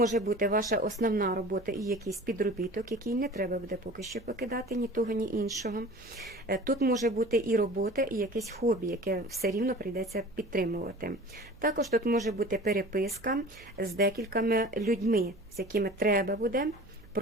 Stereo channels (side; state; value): right; noise; hum, 23 dB below the sound